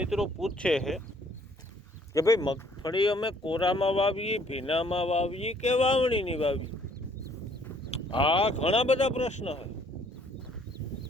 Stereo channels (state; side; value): normal; both; correlation 0.61